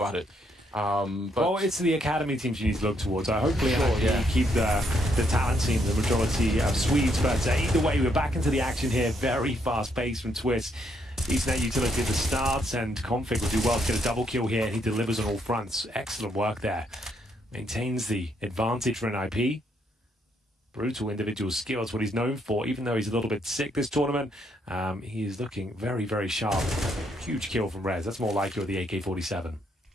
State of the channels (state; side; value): normal; both; correlation 0.74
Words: it. Well, it's the academy teams you need to look towards. Hopefully, keep the talent team, the majority of Swedes. But either way, we're back into the action here. Very fast pace from Twist. Ethernet utility at the start, and Config will do well to get a double kill here. He delivers on all fronts. Excellent work there. Maintains the advantage for an IP. Brutal individual skill is what he's known for, even though he's a little bit sick this tournament. He is looking very, very sharp. Huge kill from Rez. That's more like with the AK-47.